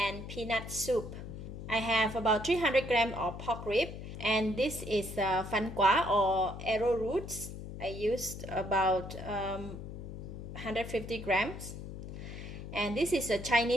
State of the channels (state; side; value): noise; left; hum, 9 dB below the sound